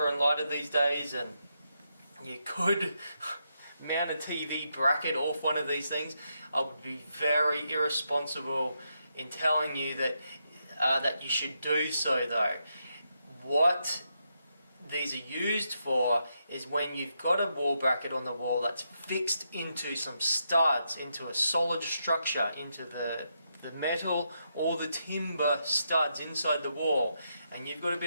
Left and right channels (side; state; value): both; inverted; correlation -0.82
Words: and lighter these days, and you could mount a TV bracket off one of these things. I would be very irresponsible in telling you that that you should do so, though. What these are used for is when you've got a wall bracket on the wall that's fixed into some studs, into a solid structure, into the metal or the timber studs inside the wall, and you've got a